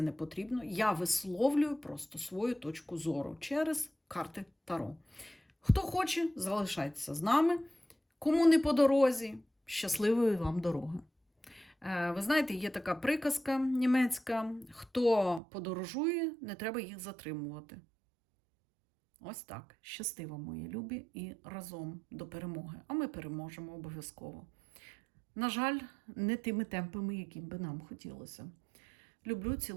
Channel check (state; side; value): drops out; left; at 15.4 s